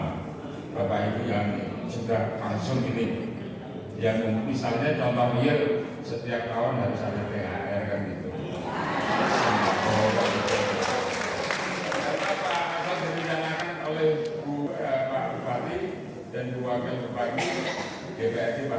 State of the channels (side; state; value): both; identical; correlation 1.00